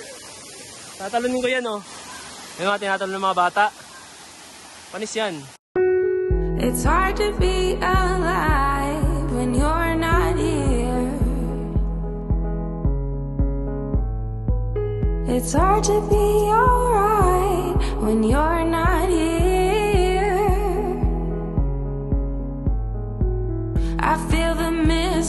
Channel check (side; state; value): both; identical; correlation 1.00